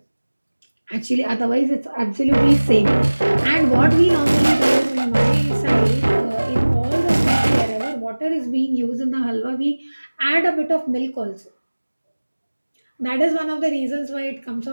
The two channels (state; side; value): inverted; both; correlation -1.00